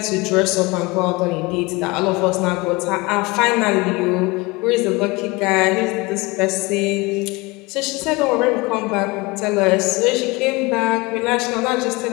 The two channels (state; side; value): quieter; right; 24.2 dB